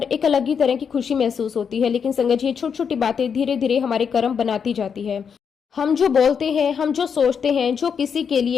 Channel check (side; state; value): right; quieter; 6.8 dB